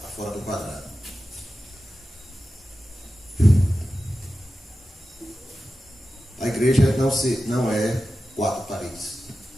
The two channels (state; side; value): normal; both; correlation 0.93